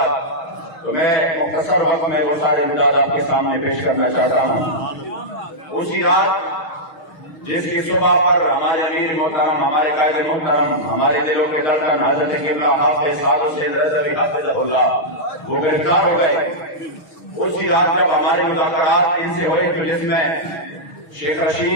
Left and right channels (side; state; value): right; late; 6.4 ms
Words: تو میں مختصر وقت میں وہ سارے امداد آپ کے سامنے پیش کرنا چاہتا ہوں۔ اسی رات جس کی صبح پر ہمارے امیر محترم، ہمارے قائد محترم، ہمارے دلوں کے دردن حضرت قبلہ حافظ سعد حسین رضوی حفظہ اللہ وہ گرفتار ہو گئے، اسی رات جب ہمارے مذاکرات ان سے ہوئے تو جس میں شیخ